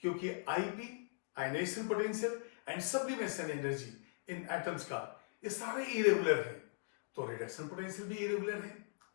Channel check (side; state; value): right; silent; digital silence